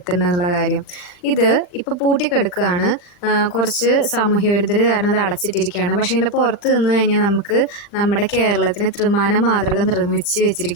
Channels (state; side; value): late; right; 39 ms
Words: കാര്യം? ഇത് ഇപ്പോൾ പൂട്ടിക്കിടക്കുകയാണ്. കുറച്ച് സാമൂഹ്യ വിരുദ്ധർ കാരണം അത് അടച്ചിട്ടിരിക്കുകയാണ്. പക്ഷേ ഇതിൻ്റെ പുറത്ത് നിന്ന് കഴിഞ്ഞാൽ നമുക്ക് നമ്മുടെ കേരളത്തിന് ത്രിമാന മാതൃക നിർമ്മിച്ച്